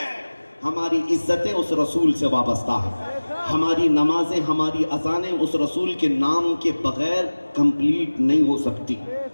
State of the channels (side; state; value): both; inverted; correlation -1.00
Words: हमारी इज्जतें उस रसूल से वाबस्ता है, हमारी नमाजें, हमारी अजानें उस रसूल के नाम के बगैर कंप्लीट नहीं हो सकती।